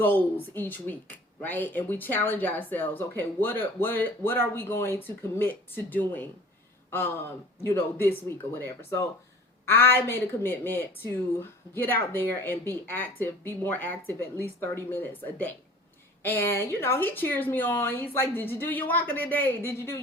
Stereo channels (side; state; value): both; normal; correlation 0.46